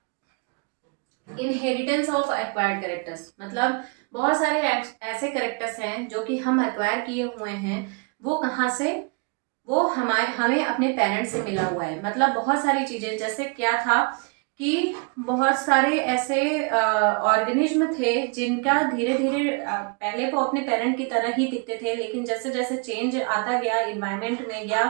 Inheritance of acquired characters मतलब बहुत सारे ऐसे कैरेक्टर्स हैं जो कि हम एक्वायर किए हुए हैं। वो कहाँ से, वो हमें अपने पेरेंट्स से मिला हुआ है। मतलब बहुत सारी चीजें, जैसे क्या था कि बहुत सारे ऐसे ऑर्गेनिज्म थे जिनका धीरे धीरे पहले वो अपने पेरेंट की तरह ही दिखते थे, लेकिन जैसे जैसे चेंज आता गया इन्वायरमेंट में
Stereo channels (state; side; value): quieter; left; 33.5 dB